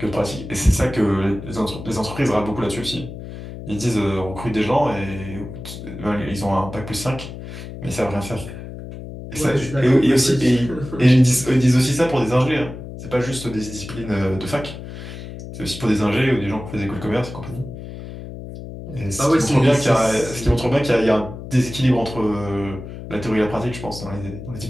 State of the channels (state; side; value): noise; left; hum, 11 dB below the sound